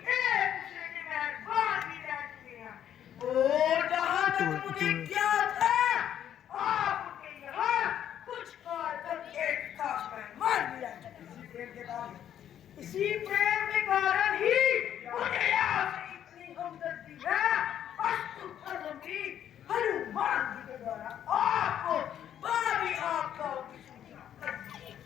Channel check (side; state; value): right; quieter; 10.2 dB